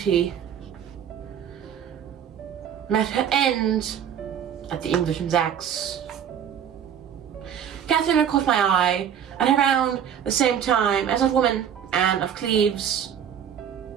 met her end at the Englishman's axe. Katheryn had caught my eye at around the same time as that woman, Anne of Cleves.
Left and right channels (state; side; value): quieter; left; 8.8 dB